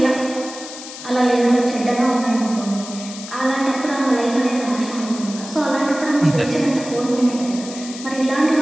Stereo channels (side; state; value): left; noise; hiss, 13 dB below the sound